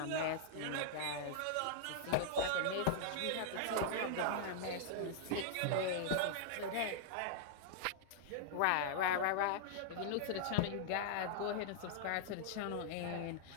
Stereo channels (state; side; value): different; both; correlation -0.01